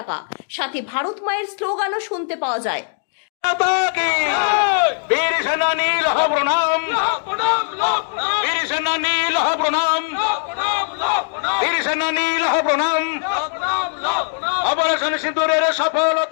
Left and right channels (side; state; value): right; silent; digital silence